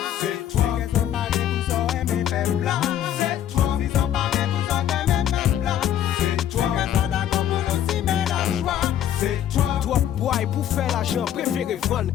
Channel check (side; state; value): right; quieter; 10.8 dB